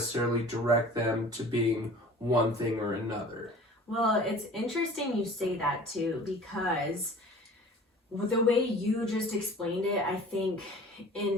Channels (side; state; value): both; normal; correlation 0.44